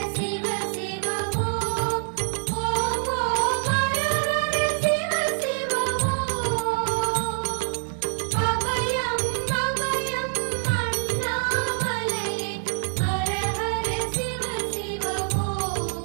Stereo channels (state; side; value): silent; left; 61 dB below the other